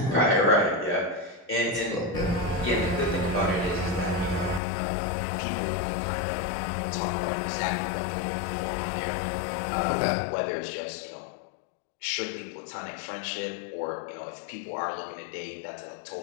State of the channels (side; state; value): right; drops out; at 4.6 s